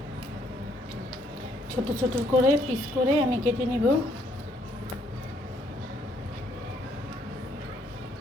ছোট ছোট করে পিস করে আমি কেটে নিব।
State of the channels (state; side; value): normal; both; correlation 0.68